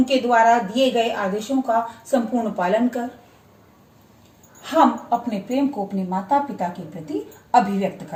द्वारा दिए गए आदेशों का संपूर्ण पालन कर हम अपने प्रेम को अपने माता पिता के प्रति अभिव्यक्त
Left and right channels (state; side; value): identical; both; correlation 1.00